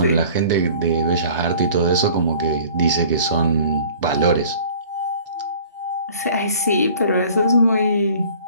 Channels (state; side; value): inverted; both; correlation -0.49